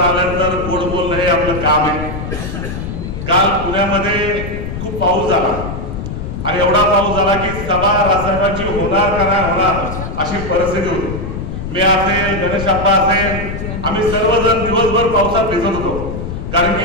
आल्यानंतर गोड बोलणं हे आपलं काम आहे. काल पुण्यामध्ये खूप पाऊस झाला आणि एवढा पाऊस झाला की सभा राजसाहेबांची होणार का नाही होणार अशी परिस्थिती होती. मी असेल, गणेश अप्पा असेल, आम्ही सर्वजण दिवसभर पावसात भिजत होतो, कारण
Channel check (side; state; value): left; noise; rumble, 6 dB below the sound